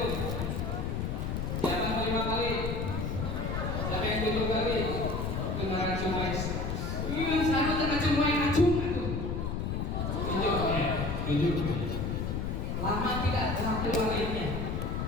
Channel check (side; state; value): left; noise; rumble, 1 dB below the sound